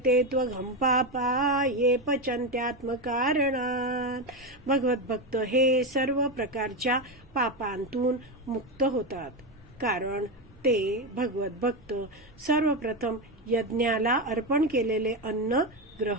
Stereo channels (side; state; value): right; noise; rumble, 27 dB below the sound